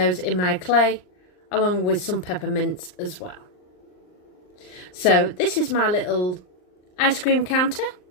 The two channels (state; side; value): late; right; 39 ms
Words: in my clay, along with some peppermints as well. So this is my little ice cream counter.